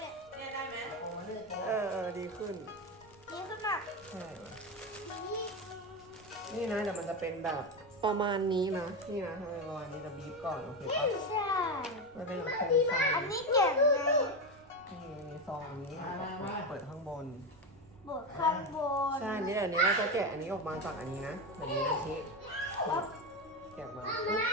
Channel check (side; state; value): right; noise; rumble, 26 dB below the sound